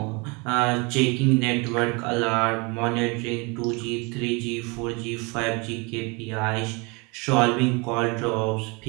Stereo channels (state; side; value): quieter; left; 28.9 dB